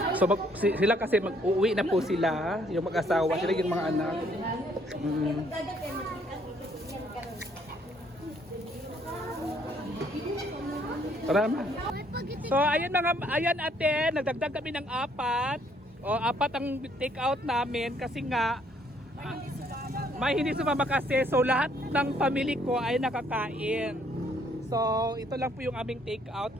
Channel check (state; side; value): normal; both; correlation 0.66